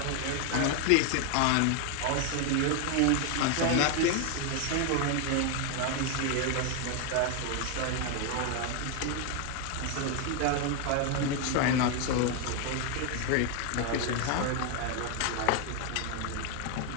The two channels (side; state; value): both; different; correlation 0.01